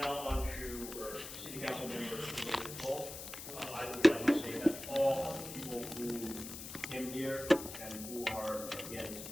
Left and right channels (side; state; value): left; noise; hiss, 10 dB below the sound